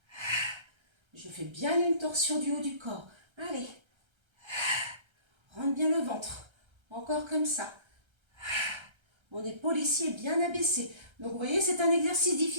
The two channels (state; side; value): late; left; 1.3 ms